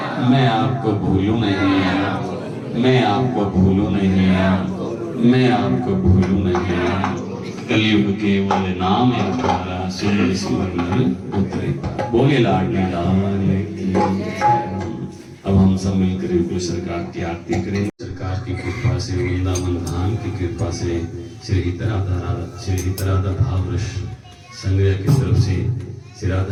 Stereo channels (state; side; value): identical; both; correlation 1.00